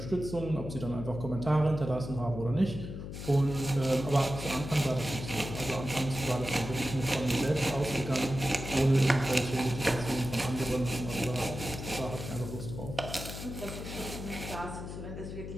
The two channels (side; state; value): left; noise; hum, 8 dB below the sound